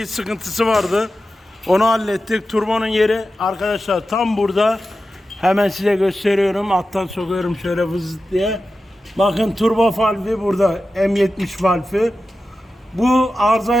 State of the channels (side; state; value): both; normal; correlation 0.92